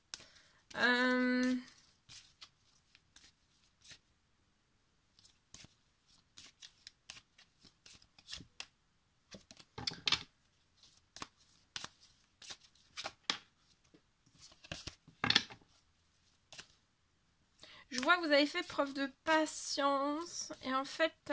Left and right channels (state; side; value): identical; both; correlation 1.00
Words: Je vois que vous avez fait preuve de patience et en fait